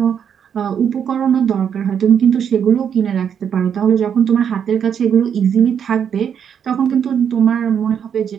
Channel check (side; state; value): left; quieter; 8.0 dB